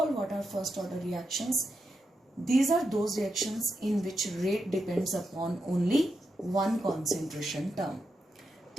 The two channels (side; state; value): both; normal; correlation 0.85